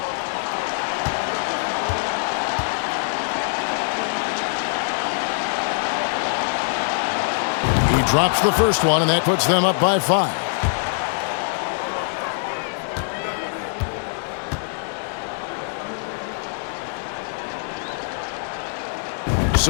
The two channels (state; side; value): silent; right; digital silence